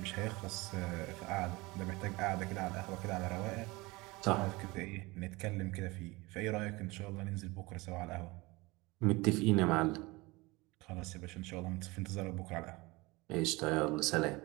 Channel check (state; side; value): quieter; left; 23.0 dB